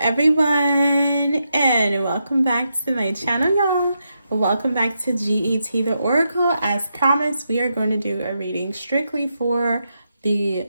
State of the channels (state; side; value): inverted; both; correlation -0.84